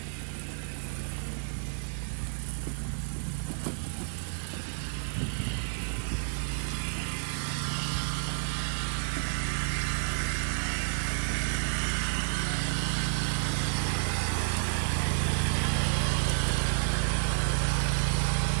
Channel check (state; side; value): silent; left; digital silence